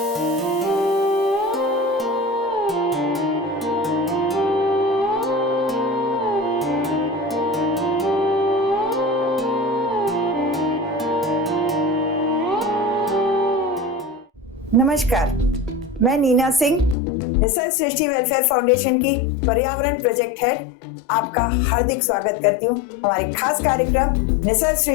मैं नीना सिंह, निसर्ग सृष्टि वेलफेयर फाउंडेशन की पर्यावरण प्रोजेक्ट हेड आपका हार्दिक स्वागत करती हूँ हमारे खास कार्यक्रम निसर्ग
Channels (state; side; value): drops out; right; at 16.9 s